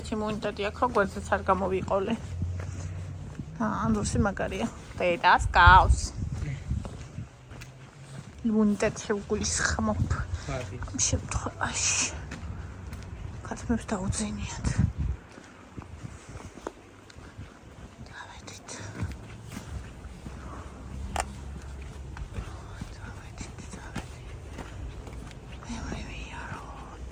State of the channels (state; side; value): identical; both; correlation 1.00